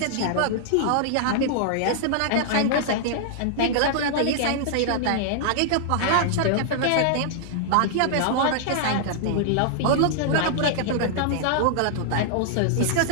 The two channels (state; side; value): different; both; correlation -0.01